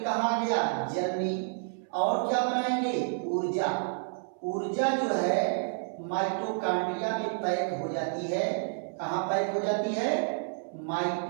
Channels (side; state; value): left; silent; 58 dB below the other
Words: आ गया? जल में। और क्या बनाएंगे? ऊर्जा। ऊर्जा जो है माइटोकॉन्ड्रिया में पैक हो जाती है। कहाँ पैक हो जाती है?